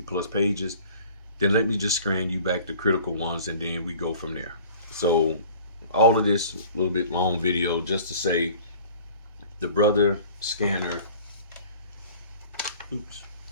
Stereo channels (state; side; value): inverted; both; correlation -0.47